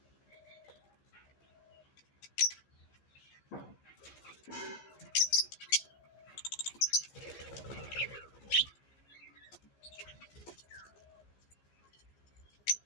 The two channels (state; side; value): late; right; 15 ms